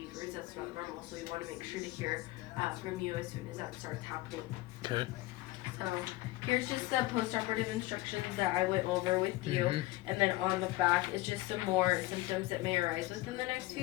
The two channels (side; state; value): right; quieter; 18.7 dB